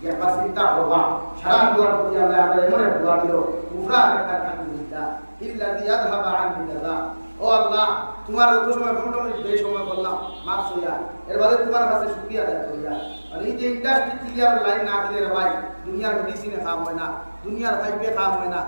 ইয়া পাসিতা হওয়া সারা দুয়ার প্রতি আল্লাহ আমরা এমন এক দোয়া দিল কুফরা একটা আলহামদুলিল্লাহ ইল্লাযী আযহাবা আননি আযা ও আল্লাহ তোমার যত সময় ঘন্টা মিনিট বেশি সময় বললাম মাফ হইয়া এর বাদে তোমার কাছে শুকরিয়া আদায় করিয়া আর এই যে ইন্ডাস্ট্রি ক্লিয়ার লাইন না দিলে রে ভাই দুনিয়ার মেডিসিনে খাওয়া হয় না দুনিয়ার ফাইবে খাওয়া হয় না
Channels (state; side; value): inverted; both; correlation -1.00